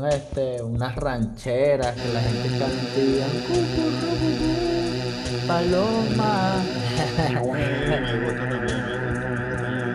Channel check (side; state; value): both; identical; correlation 1.00